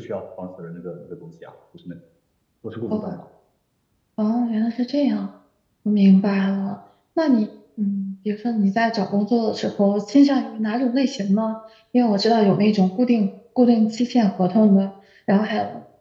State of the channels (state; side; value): identical; both; correlation 1.00